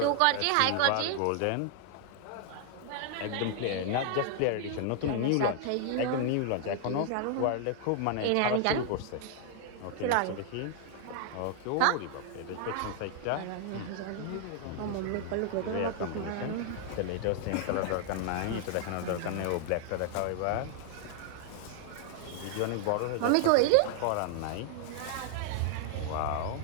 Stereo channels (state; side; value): different; both; correlation 0.00